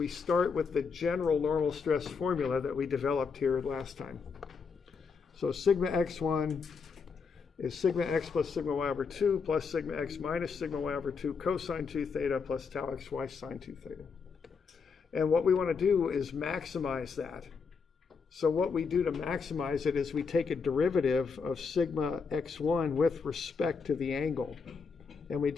start with the general normal stress formula that we developed here last time. So sigma x1 is sigma x plus sigma y over 2 plus sigma x minus sigma y over 2 cosine 2 theta plus tau xy sine 2 theta. And what we want to do is maximize that. So what we do to maximize it is we take a derivative of sigma x1 with respect to the angle. And we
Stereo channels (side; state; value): right; quieter; 5.3 dB